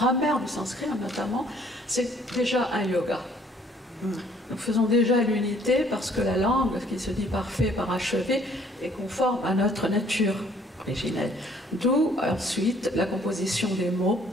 du sanskrit notamment, c'est déjà un yoga. Nous faisons déjà l'unité parce que la langue, qui se dit parfait, parachevé, est conforme à notre nature originelle. D'où ensuite la composition des mots,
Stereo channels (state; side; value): normal; both; correlation 0.61